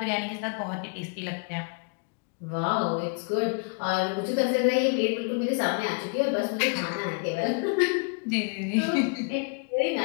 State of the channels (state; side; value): quieter; right; 37.8 dB